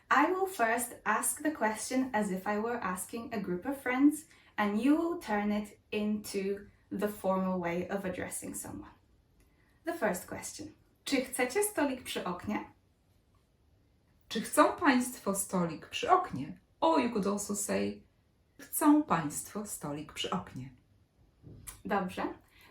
I will first ask the question as if I were asking a group of friends, and you will turn it into the formal way of addressing someone. The first question. Czy chcecie stolik przy oknie? Czy chcą państwo stolik przy oknie? Or you could also say, chcą państwo stolik przy oknie. Dobrze.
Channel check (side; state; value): both; identical; correlation 1.00